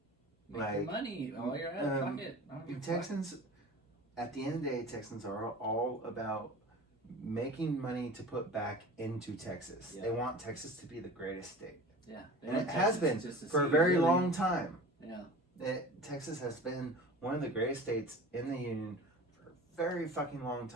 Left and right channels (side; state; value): both; normal; correlation 0.38